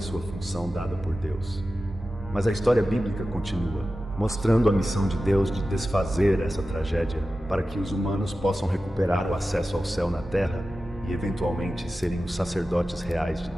função dada por Deus. Mas a história bíblica continua, mostrando a missão de Deus de desfazer essa tragédia para que os humanos possam recuperar o acesso ao céu na terra e, eventualmente, serem os sacerdotes reais de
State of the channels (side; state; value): both; normal; correlation 0.93